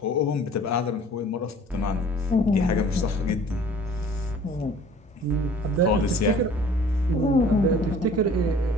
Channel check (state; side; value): normal; both; correlation 0.49